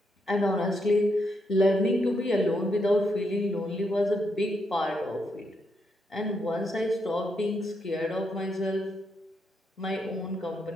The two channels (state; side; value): normal; both; correlation 0.79